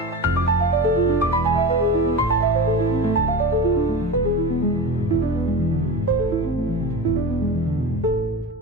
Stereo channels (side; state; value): both; normal; correlation 0.28